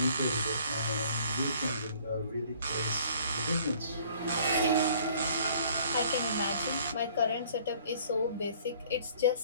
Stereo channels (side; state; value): both; inverted; correlation -0.56